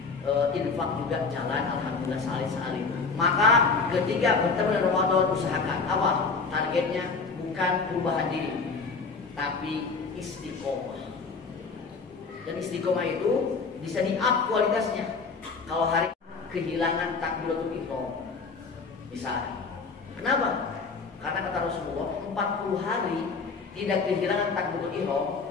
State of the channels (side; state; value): right; quieter; 4.6 dB